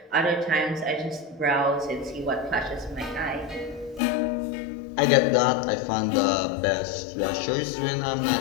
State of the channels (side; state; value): right; drops out; at 4.0 s